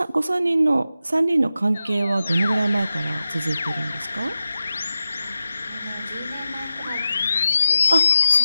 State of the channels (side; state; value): both; inverted; correlation -0.91